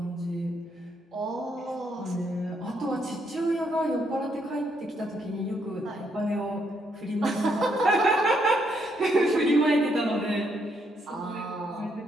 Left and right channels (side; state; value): both; normal; correlation 0.74